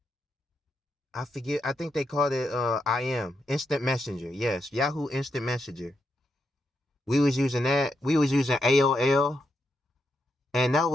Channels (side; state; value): both; normal; correlation 0.83